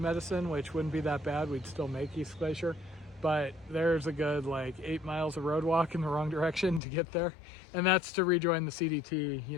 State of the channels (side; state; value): right; drops out; at 6.8 s